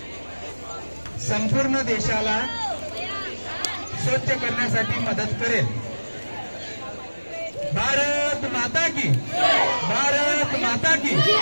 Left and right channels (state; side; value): inverted; both; correlation -1.00